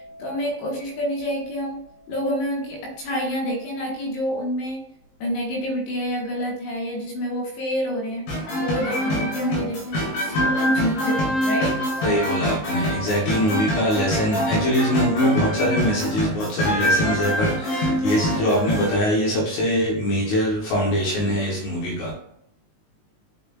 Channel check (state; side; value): late; right; 19 ms